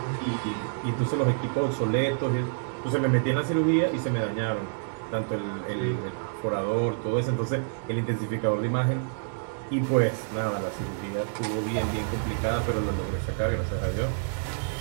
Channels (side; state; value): left; silent; 59 dB below the other